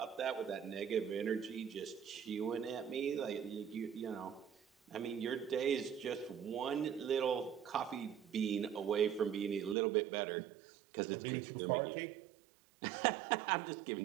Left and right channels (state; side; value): drops out; left; at 9.8 s